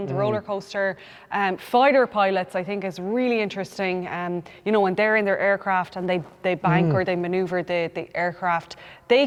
the roller coaster. Fighter pilots, I think, is really interesting. You know, when they're in their aircraft and they bank or they maneuver the aircraft, they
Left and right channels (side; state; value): both; identical; correlation 1.00